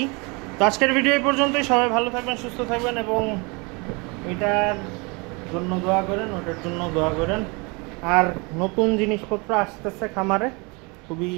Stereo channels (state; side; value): quieter; left; 29.0 dB